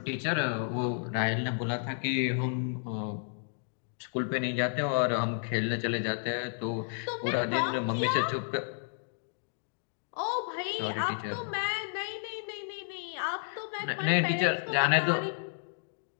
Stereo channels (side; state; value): right; silent; digital silence